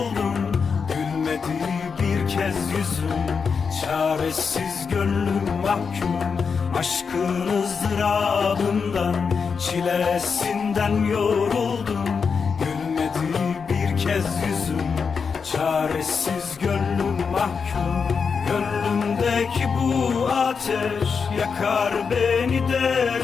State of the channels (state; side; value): quieter; right; 5.7 dB